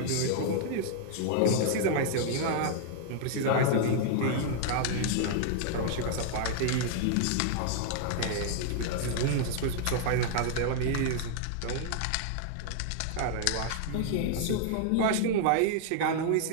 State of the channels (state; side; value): different; both; correlation -0.01